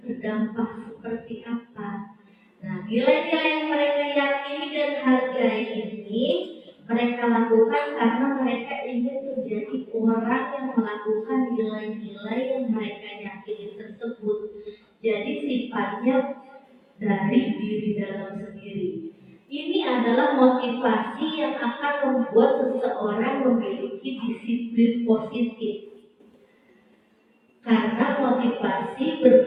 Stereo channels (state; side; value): identical; both; correlation 1.00